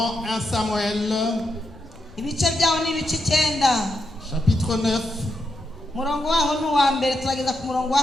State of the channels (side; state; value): left; noise; rumble, 25 dB below the sound